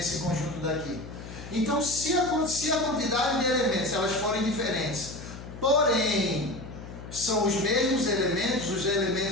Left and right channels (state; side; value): noise; left; hum, 13 dB below the sound